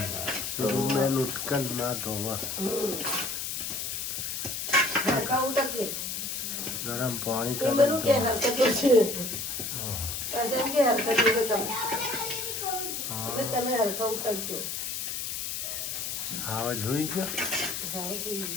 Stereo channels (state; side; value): noise; left; hiss, 4 dB below the sound